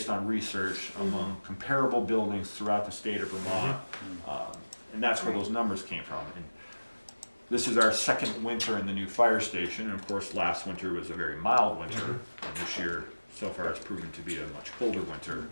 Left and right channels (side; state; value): both; inverted; correlation -1.00